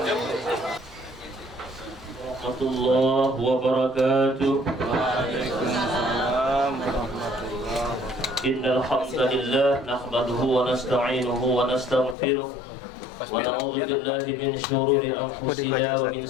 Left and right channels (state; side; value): drops out; right; at 12.2 s